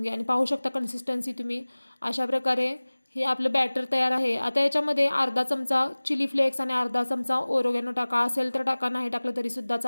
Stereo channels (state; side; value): inverted; both; correlation -1.00